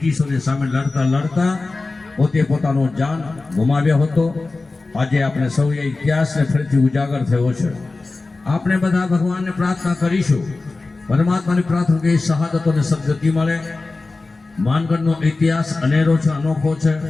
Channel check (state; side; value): quieter; right; 3.5 dB